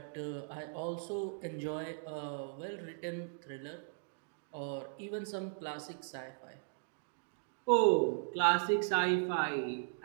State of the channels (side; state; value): left; silent; digital silence